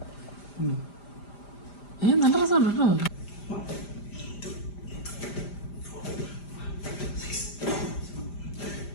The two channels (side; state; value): right; late; 5.0 ms